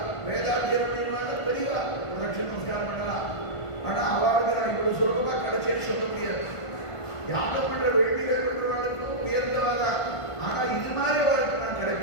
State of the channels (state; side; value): late; right; 1.5 ms